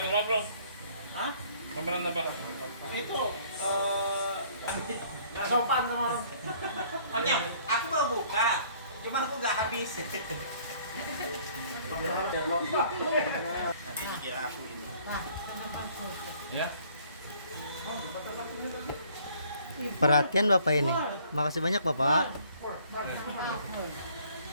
apa bro? Hah? Pameran apa? Itu nggak sopan sama orang. Makanya aku mau buka, cuma aku nggak habis. Nanti kira aku ini. Nah, kenapa tutup? Ya. Perhatian Bapak ini. Makasih banyak, Bapak. Bak sampah, Hol.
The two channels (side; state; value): both; inverted; correlation -0.58